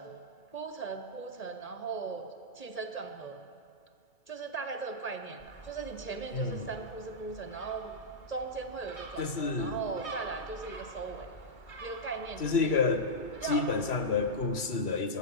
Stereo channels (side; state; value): right; late; 3.1 ms